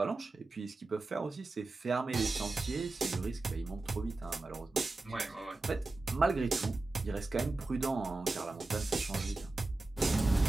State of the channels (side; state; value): left; quieter; 3.2 dB